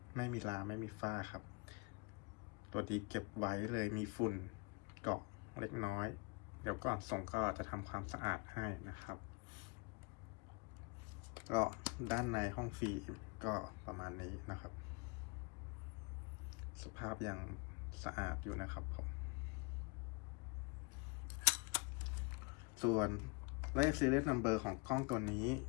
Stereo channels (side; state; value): right; quieter; 28.5 dB